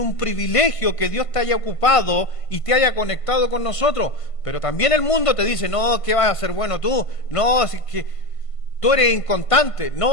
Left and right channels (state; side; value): late; right; 1.5 ms